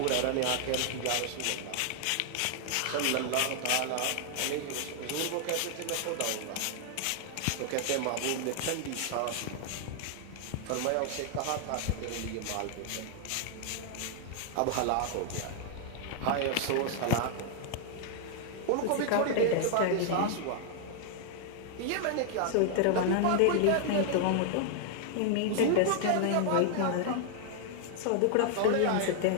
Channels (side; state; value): both; different; correlation 0.00